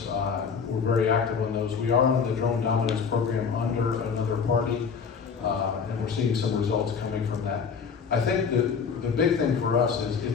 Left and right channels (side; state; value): right; quieter; 6.0 dB